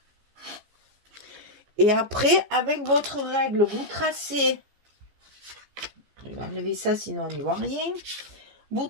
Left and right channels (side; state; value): left; late; 14 ms